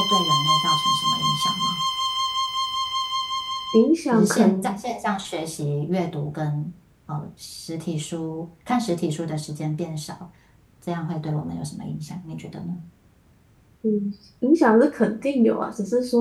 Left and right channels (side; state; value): both; identical; correlation 1.00